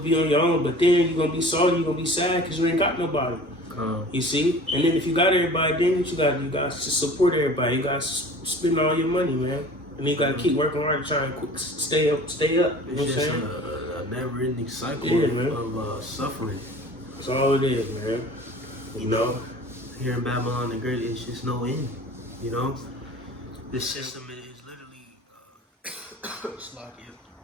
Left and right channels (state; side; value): normal; both; correlation 0.43